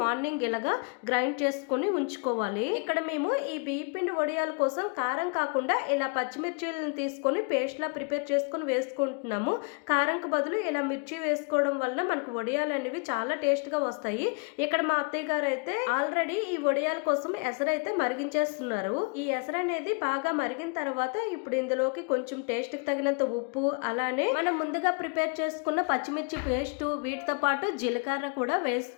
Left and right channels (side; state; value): right; quieter; 36.3 dB